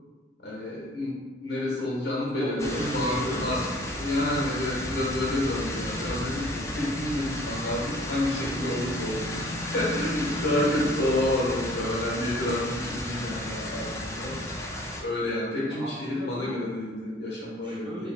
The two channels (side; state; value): both; normal; correlation 0.52